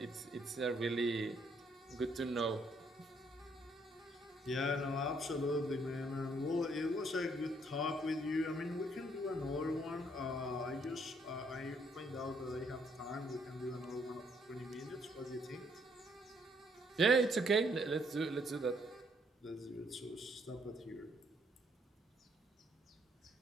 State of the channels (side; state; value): both; normal; correlation 0.69